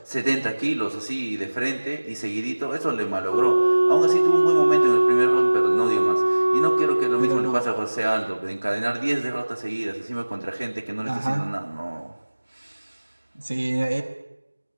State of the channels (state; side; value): inverted; both; correlation -1.00